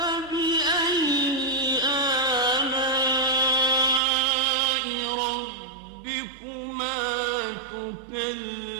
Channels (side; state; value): left; drops out; at 4.0 s